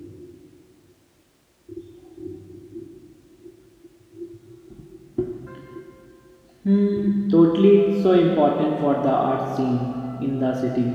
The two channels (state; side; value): identical; both; correlation 1.00